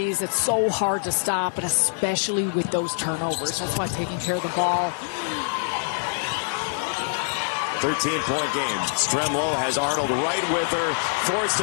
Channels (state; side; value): silent; right; 62 dB below the other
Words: It's so hard to stop, and especially with those turnovers. That's why taking care of the ball. 13-point game. Stremlow has Arnold right with her. Forced